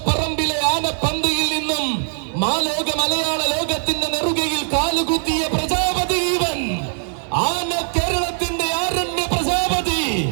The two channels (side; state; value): left; silent; digital silence